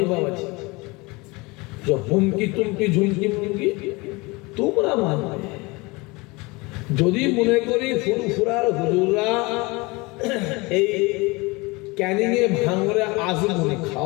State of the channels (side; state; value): right; quieter; 25.0 dB